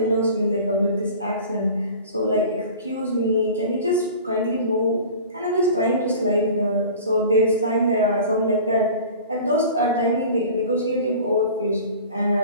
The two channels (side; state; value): both; inverted; correlation -0.40